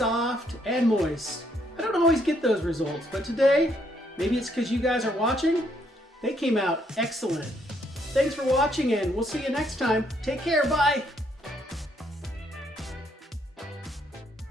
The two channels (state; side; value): normal; both; correlation 0.71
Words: and moist. I don't always get those results, but today, maybe it's because you guys are watching, they came out excellent. Thanks for watching, and we'll see you next time. Take care, bye.